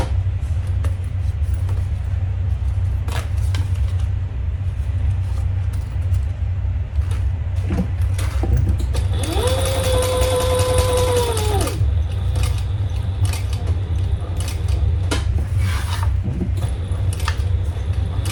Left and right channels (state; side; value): identical; both; correlation 1.00